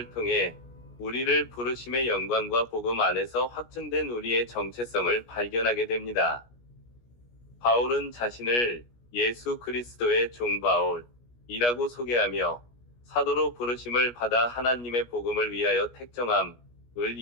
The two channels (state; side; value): late; right; 17 ms